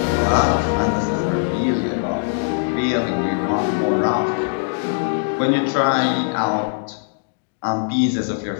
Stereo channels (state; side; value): silent; right; digital silence